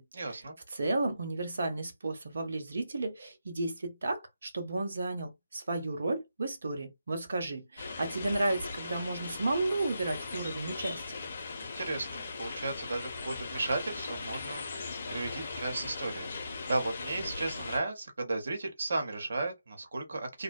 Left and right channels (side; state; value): both; inverted; correlation -0.86